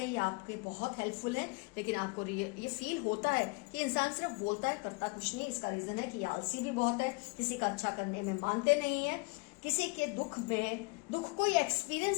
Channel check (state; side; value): quieter; right; 30.1 dB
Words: हैं ये आपके बहुत हेल्पफुल है, लेकिन आपको ये फील होता है कि इंसान सिर्फ बोलता है करता कुछ नहीं। इसका रीजन है कि आलसी भी बहुत है, किसी का अच्छा करने में मानते नहीं है, किसी के दुख को ये